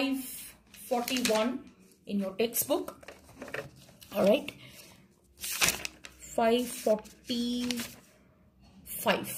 in your textbook. All right.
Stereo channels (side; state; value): both; identical; correlation 1.00